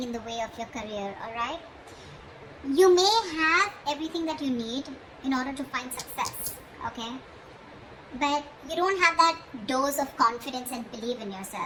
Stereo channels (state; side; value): identical; both; correlation 1.00